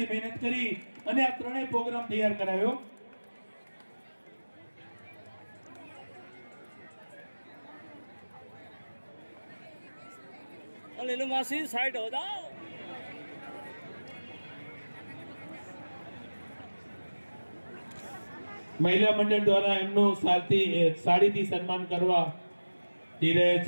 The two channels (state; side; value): inverted; both; correlation -1.00